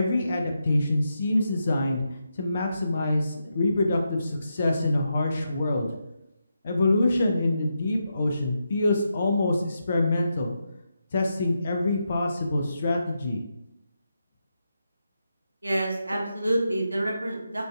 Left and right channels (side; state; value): both; inverted; correlation -0.85